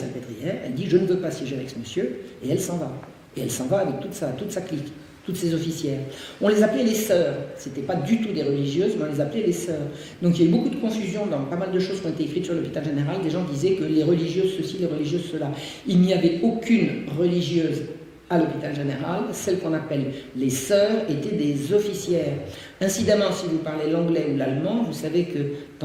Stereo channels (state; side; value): identical; both; correlation 1.00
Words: Elle dit « Je ne veux pas siéger avec ce monsieur », et elle s'en va. Et elle s'en va avec toute sa clique, toutes ses officières. On les appelait les sœurs. Ce n'étaient pas du tout des religieuses, mais on les appelait les sœurs. Donc il y a eu beaucoup de confusion dans pas mal de choses qui ont été écrites sur l'hôpital général. Des gens disaient que les religieuses ceci, les religieuses cela. Il n'y avait aucune religieuse à l'hôpital général. Celles qu'on appelle les sœurs étaient des officières. Incidemment, si vous parlez l'anglais ou l'allemand, vous savez que